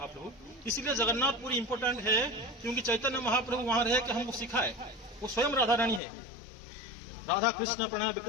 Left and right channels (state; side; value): drops out; right; at 6.0 s